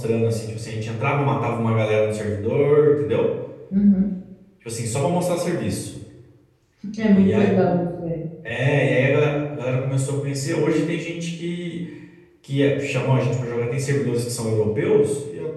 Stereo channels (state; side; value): identical; both; correlation 1.00